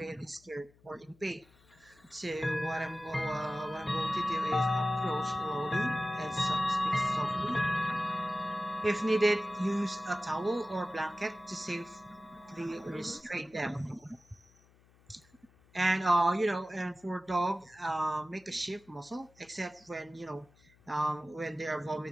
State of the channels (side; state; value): left; noise; hum, 29 dB below the sound